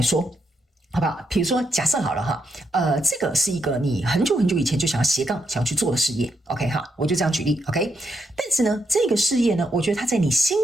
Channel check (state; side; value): normal; both; correlation 0.80